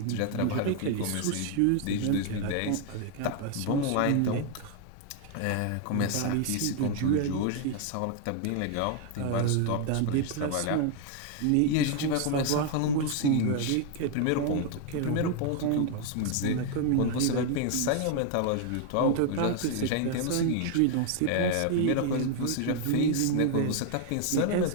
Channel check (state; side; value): different; both; correlation 0.00